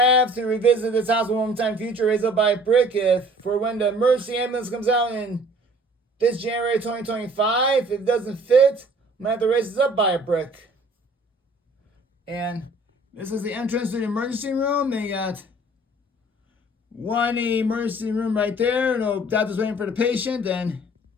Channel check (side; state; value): both; normal; correlation 0.53